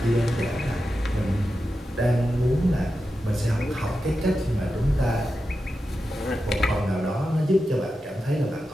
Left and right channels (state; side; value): normal; both; correlation 0.90